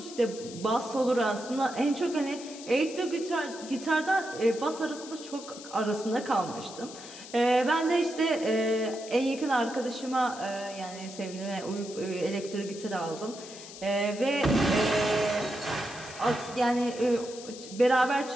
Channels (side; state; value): left; noise; hiss, 14 dB below the sound